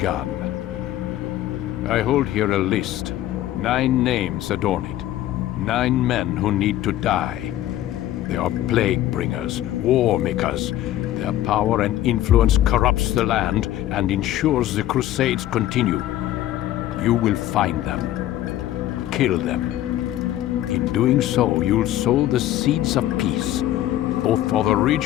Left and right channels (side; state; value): right; quieter; 13.6 dB